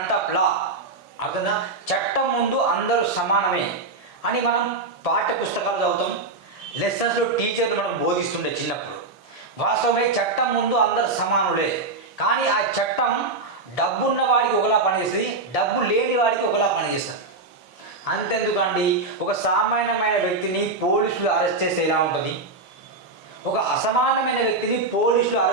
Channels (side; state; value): left; quieter; 3.5 dB